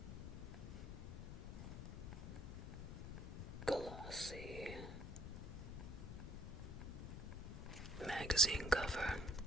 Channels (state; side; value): noise; left; rumble, 7 dB below the sound